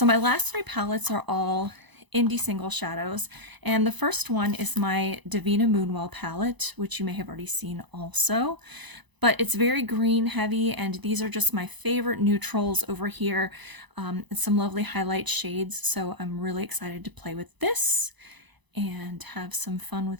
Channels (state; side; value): late; left; 1.0 ms